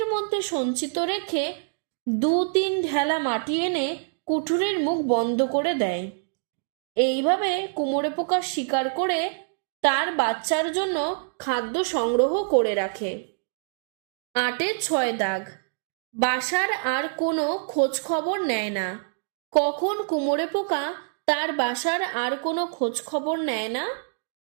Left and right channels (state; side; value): silent; left; digital silence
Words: মধ্যে সঞ্চিত রেখে 2-3 ঢেলা মাটি এনে কুঠুরির মুখ বন্ধ করে দেয়। এইভাবে কুমোরে পোকা শিকার করে তার বাচ্চার জন্য খাদ্য সংগ্রহ করে রাখে। 8-6 দাগ। বাসার আর কোনো খোঁজ খবর নেয় না। কখন কুমোরে পোকা তার বাসার আর কোনো খোঁজ খবর নেয় না?